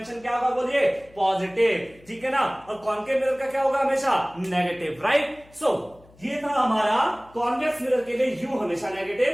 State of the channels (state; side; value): noise; left; hum, 27 dB below the sound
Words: क्या होगा, बोलिए पॉजिटिव, ठीक है ना। और कॉन्केव मिरर का क्या होगा, हमेशा नेगेटिव, राइट। सो ये था हमारा कॉन्वेक्स मिरर के लिए U हमेशा